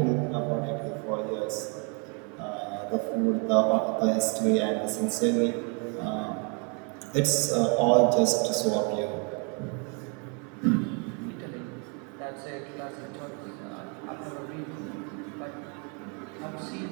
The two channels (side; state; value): left; quieter; 35.4 dB